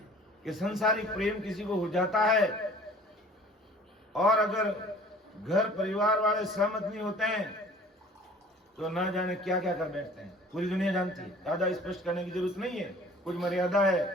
कि संसारिक प्रेम किसी को हो जाता है, और अगर घर परिवार वाले सहमत नहीं होते हैं तो ना जाने क्या क्या कर बैठते हैं। पूरी दुनिया जानती है, ज्यादा स्पष्ट करने की जरूरत नहीं है, कुछ मर्यादा है।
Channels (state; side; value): normal; both; correlation 0.49